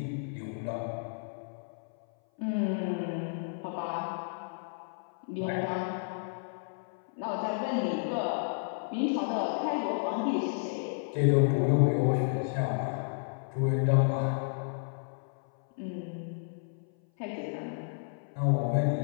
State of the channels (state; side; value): silent; right; 57 dB below the other